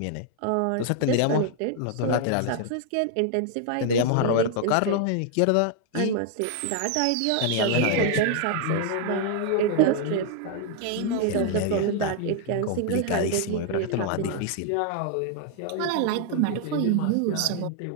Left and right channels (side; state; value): both; different; correlation 0.00